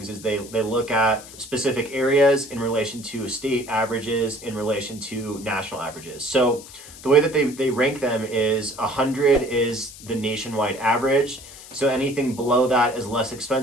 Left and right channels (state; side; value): noise; left; hiss, 17 dB below the sound